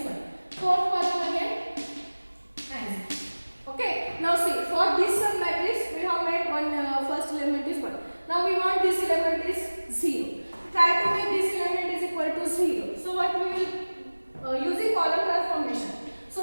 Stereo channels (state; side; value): inverted; both; correlation -1.00